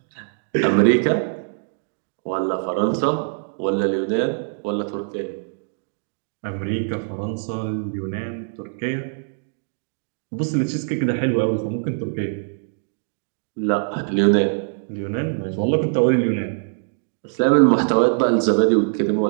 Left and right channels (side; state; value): left; silent; digital silence